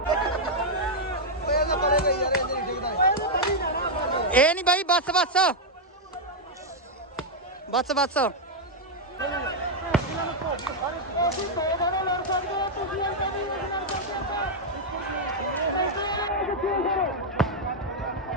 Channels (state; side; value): normal; both; correlation -0.02